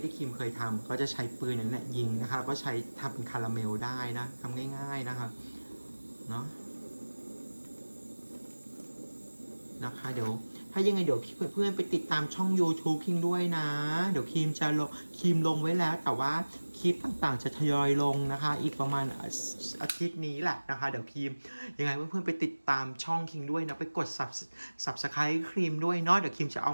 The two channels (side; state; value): both; inverted; correlation -1.00